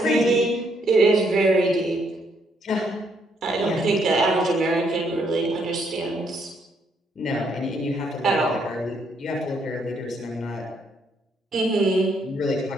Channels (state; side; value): normal; both; correlation 0.72